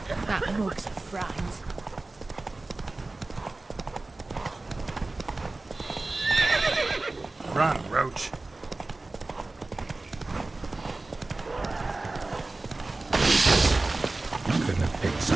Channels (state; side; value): quieter; left; 3.2 dB